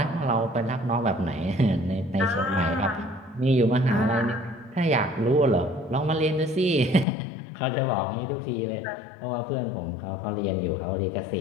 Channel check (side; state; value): right; drops out; at 7.1 s